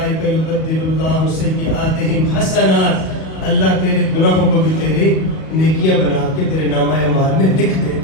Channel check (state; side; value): late; right; 37 ms